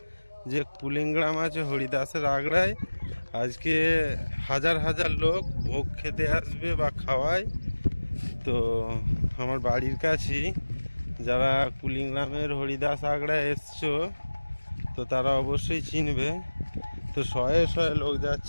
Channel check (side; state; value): both; inverted; correlation -1.00